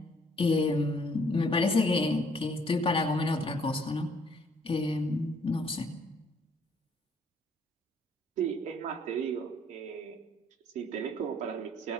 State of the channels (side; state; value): both; normal; correlation 0.63